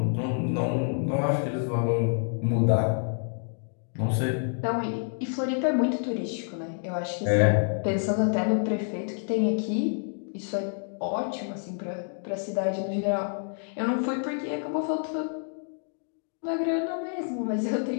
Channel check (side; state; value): right; silent; 59 dB below the other